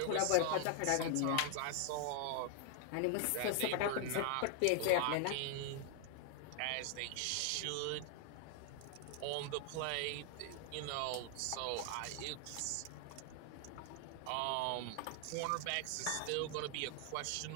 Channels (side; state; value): both; different; correlation 0.00